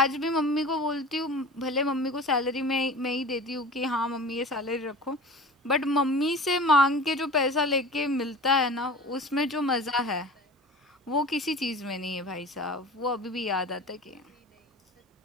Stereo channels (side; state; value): both; normal; correlation 0.38